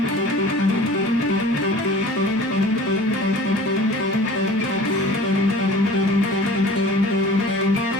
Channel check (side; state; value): both; normal; correlation 0.43